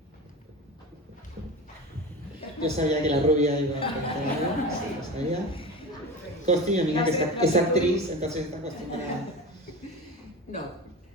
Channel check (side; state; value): both; normal; correlation 0.28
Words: Yo sabía que la rubia iba a preguntar, sí, lo sabía. Costi, mi amiga, que es actriz, entonces está acostumbrada. No.